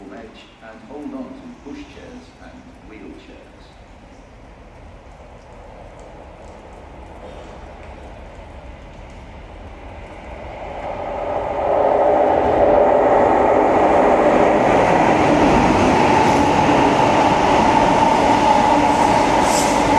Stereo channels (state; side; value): identical; both; correlation 1.00